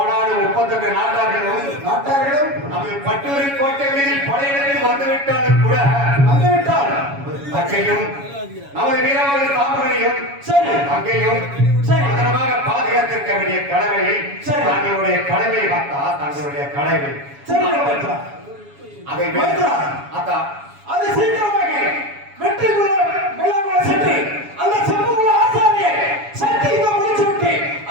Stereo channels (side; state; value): left; late; 7.2 ms